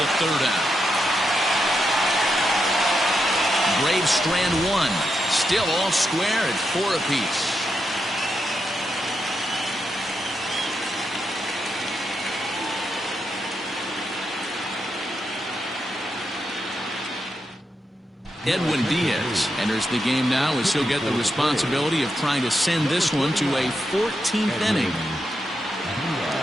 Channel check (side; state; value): both; normal; correlation 0.84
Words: 3rd out. Braves strand 1, still all square at 4 apiece. Edwin Diaz enters the game now as he'll get the responsibility of trying to send this one to a 14th inning.